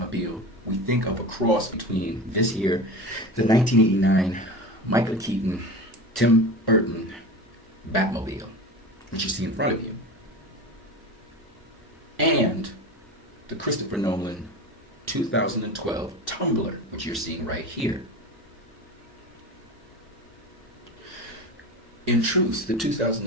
we think of a cross between this here, the 1989 Michael Keaton, Tim Burton Batmobile, which you see in front of you, and the Christopher Nolan 2012 Tumbler, which you're seeing right here. In truth, the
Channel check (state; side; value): normal; both; correlation 0.30